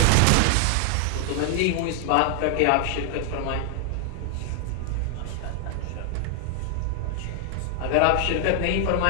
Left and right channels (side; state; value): both; different; correlation 0.00